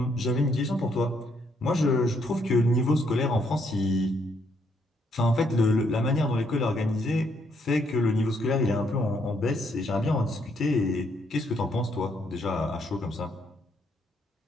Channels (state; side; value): normal; both; correlation 0.72